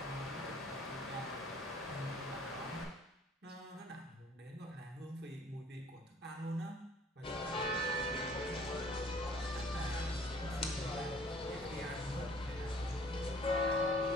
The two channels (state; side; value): normal; both; correlation 0.55